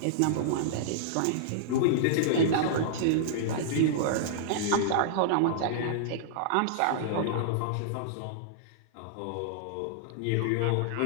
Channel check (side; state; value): both; different; correlation -0.02